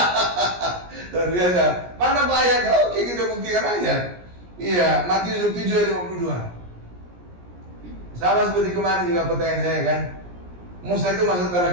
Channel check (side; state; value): left; late; 17 ms